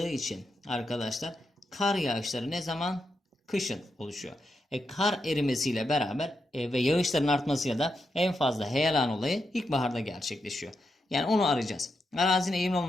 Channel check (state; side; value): normal; both; correlation 0.85